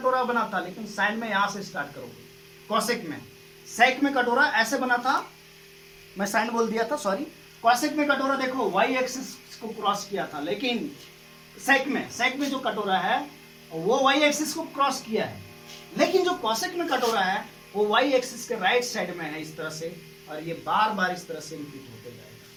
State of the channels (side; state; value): both; identical; correlation 1.00